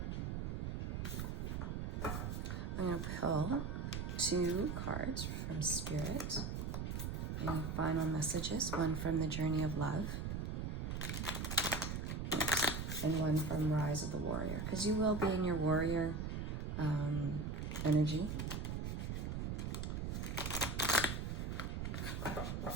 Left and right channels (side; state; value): right; noise; rumble, 2 dB below the sound